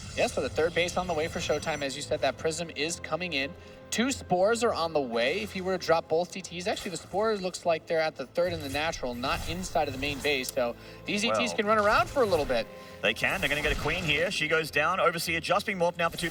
Yes, so the 3rd base on the way for ShoWTimE. As you said, that Prism is coming in. 2 Spores are on the way. If you were to drop both DTs, actually the Spores looks like they're at the 3rd and the natural, not inside of the main base. So these ETs Well. can run around for a little bit. They can. They're going to get a Queen here. She goes down. Overseer just being morphed now for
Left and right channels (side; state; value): both; identical; correlation 1.00